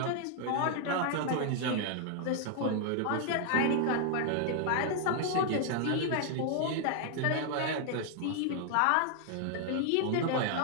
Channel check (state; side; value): different; both; correlation 0.00